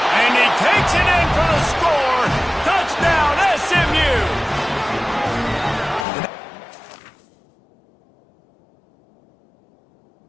And he takes it in for the score. Touchdown, SMU!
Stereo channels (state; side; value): drops out; right; at 6.1 s